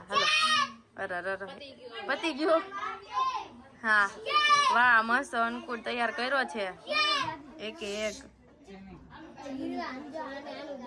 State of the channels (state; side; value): identical; both; correlation 1.00